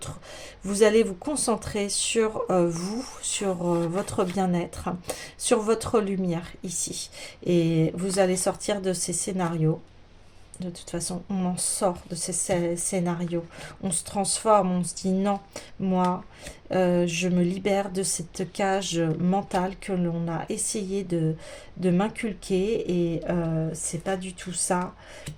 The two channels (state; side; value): identical; both; correlation 1.00